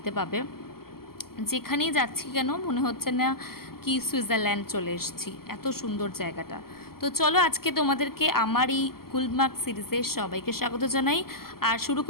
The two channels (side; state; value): right; late; 0.93 ms